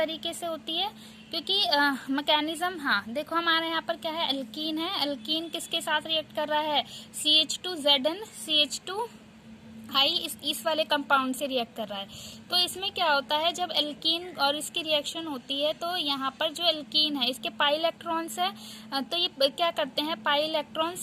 से होती है, क्योंकि मैकेनिज्म, हाँ देखो हमारे यहाँ पर क्या है, एल्कीन है, एल्कीन किसके साथ रिएक्ट कर रहा है, CH2 Zn CH2I इस वाले कंपाउंड से रिएक्ट कर रहा है। तो इसमें क्या होता है, जब एल्कीन और इसकी रिएक्शन होती है तो यहाँ पर जो एल्कीन है इसके पाई इलेक्ट्रॉन्स है, तो ये क्या करते हैं, पाई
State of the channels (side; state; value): both; identical; correlation 1.00